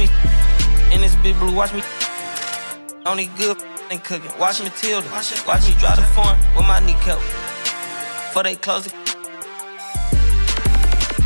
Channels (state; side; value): inverted; both; correlation -1.00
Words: in this big blue. Watch me only good and cooking. Watch Matilda. Watch me drive the form with my kneecap. Before they close the